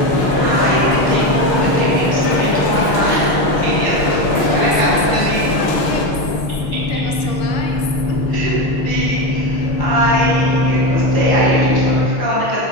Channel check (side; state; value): right; late; 6.5 ms